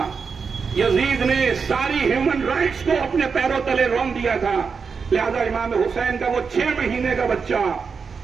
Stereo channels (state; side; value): quieter; left; 5.5 dB